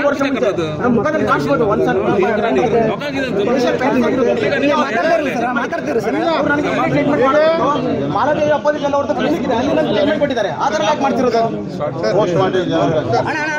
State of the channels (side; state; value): both; identical; correlation 1.00